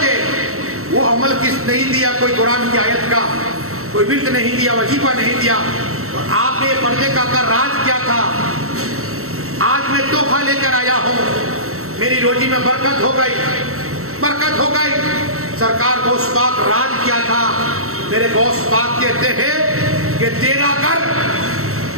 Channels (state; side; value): late; left; 0.63 ms